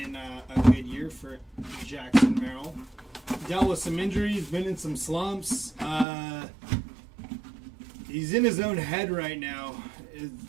a good year for Jackson Merrill. Dealt with some injuries, been in some slumps. He's in his own head right now.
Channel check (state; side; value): drops out; left; at 6.1 s